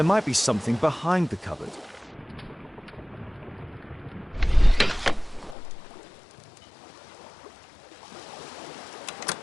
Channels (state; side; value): drops out; right; at 5.6 s